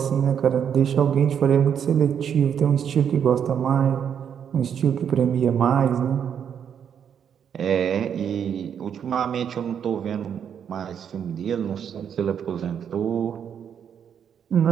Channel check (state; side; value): quieter; left; 8.2 dB